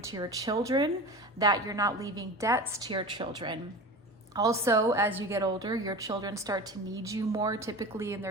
to your children, that you're not leaving debts to your children. Also, as you get older, your children start to need you more, typically in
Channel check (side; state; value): both; normal; correlation 0.32